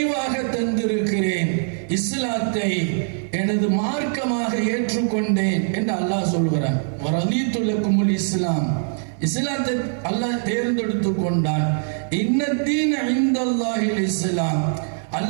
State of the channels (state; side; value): silent; left; 59 dB below the other